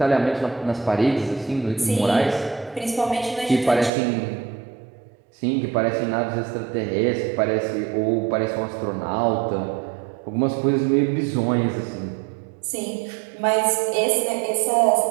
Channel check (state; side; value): drops out; left; at 3.9 s